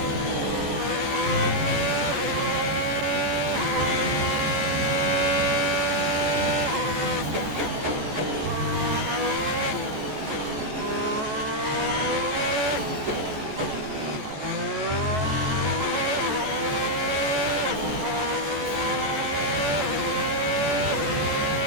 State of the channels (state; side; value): late; left; 14 ms